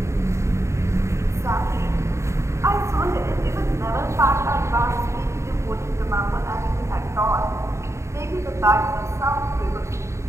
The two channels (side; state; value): left; late; 0.14 ms